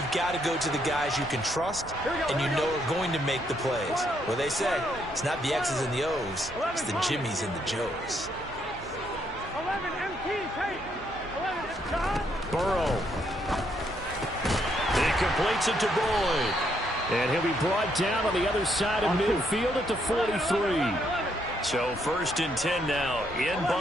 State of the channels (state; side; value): normal; both; correlation 0.74